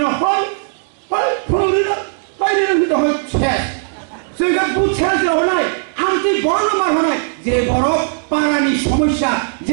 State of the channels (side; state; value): left; silent; 68 dB below the other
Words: हय फुलुरिनो हयनो दहय छे जों गा बुछा जरनाय आमति बड़ मार हनाय जे बड़ पारानि समस्या